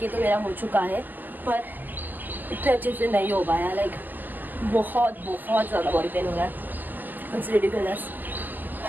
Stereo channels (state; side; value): late; left; 0.086 ms